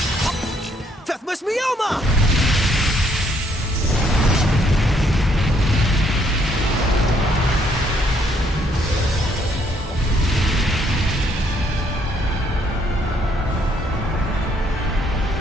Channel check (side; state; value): both; normal; correlation 0.69